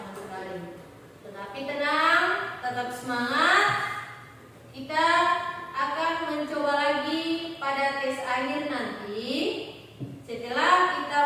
sekali. Tetapi tenang, tetap semangat. Kita akan mencoba lagi pada tes akhir nanti setelah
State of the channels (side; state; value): both; identical; correlation 1.00